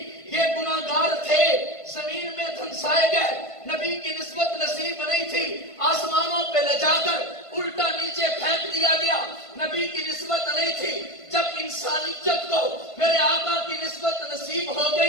یہ گناہگار تھے، زمین میں دھنسائے گئے، نبی کی نسبت نصیب نہیں تھی، آسمانوں پہ لے جا کر الٹا نیچے پھینک دیا گیا، نبی کی نسبت نہیں تھی۔ جب انسانیت کو میرے آقا کی نسبت نصیب ہو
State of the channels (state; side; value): late; right; 1.5 ms